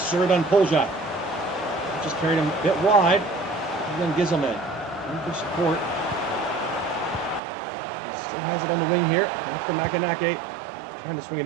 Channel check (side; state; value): left; drops out; at 7.4 s